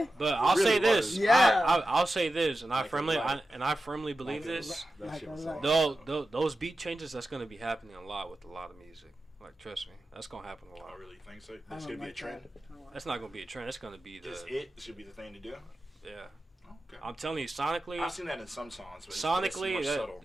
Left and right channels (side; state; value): both; normal; correlation 0.93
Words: But I'll really say this. was. Yeah. I'll say this, and I Like firmly a lot. I firmly believe Like a this. lot. That Like shit a was lot. solid. Those beat changes, that's going to be happening a lot with a lot of music. Like, trust me, that's going to happen a I lot. don't really think so. I That's don't gonna be a like trend. that. I don't like That's not going to be a trend. It's going to be Just the it should be the thing to do. yeah. Okay. I'm telling you, sonically, I've seen that in some songs, but it's sonically, much subtle,